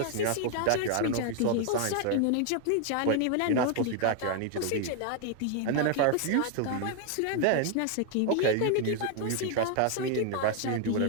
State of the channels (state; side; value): different; both; correlation 0.00